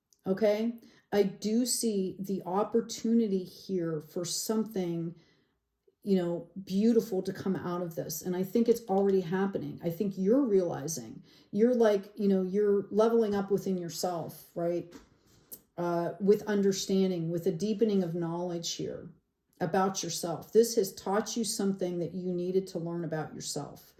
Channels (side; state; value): both; identical; correlation 1.00